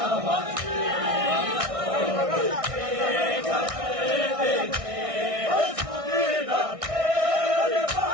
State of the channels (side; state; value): left; late; 1.6 ms